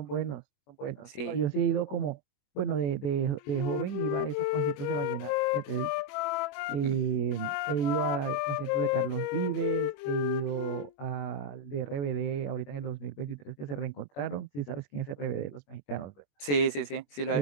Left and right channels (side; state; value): right; late; 21 ms